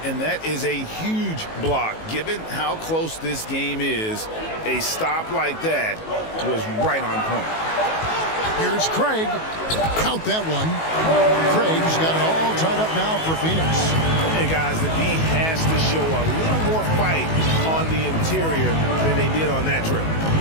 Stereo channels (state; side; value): late; right; 19 ms